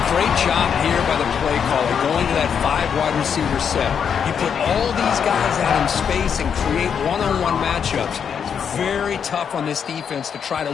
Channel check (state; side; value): quieter; right; 7.4 dB